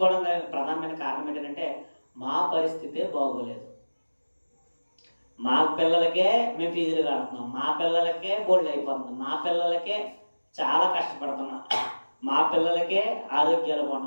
ప్రధానమైన కారణం ఏంటంటే మా పరిస్థితే బాగోలేదు, మా పిల్లలకే మేము ఫీజులు కడుతున్నాం, మా పిల్లలకే బోల్డ్ అయిపోతున్నాం, మా పిల్లలకే చాలా కష్టపడుతున్నాం, మా పిల్లలకే ఆరోగ్యాలు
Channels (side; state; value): both; inverted; correlation -1.00